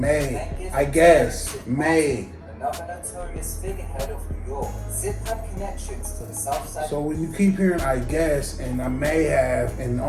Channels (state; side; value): identical; both; correlation 1.00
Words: then given I to guess. Zip May. another notorious figurehead of New York. Zip had connections to the South Side. So when you keep hearing I guess and I may have and